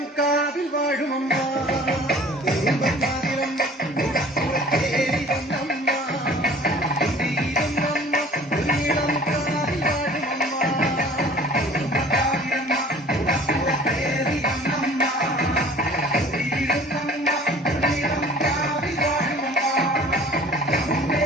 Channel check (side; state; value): both; normal; correlation 0.49